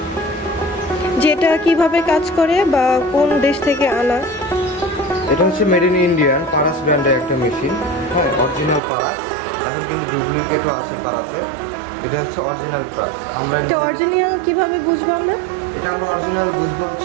যেটা কিভাবে কাজ করে বা কোন দেশ থেকে আনা? এটা হচ্ছে মেড ইন ইন্ডিয়ান পারাস ব্র্যান্ডের একটা মেশিন। হ্যাঁ, অরিজিনাল পারাস। এখন কিন্তু ডুপ্লিকেটও আছে পারাসের। এটা হচ্ছে অরিজিনাল পারাস। তো অরিজিনাল কিভাবে বুঝবো আমরা? এটা আমরা অরিজিনাল বুঝবো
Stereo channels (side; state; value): left; drops out; at 8.8 s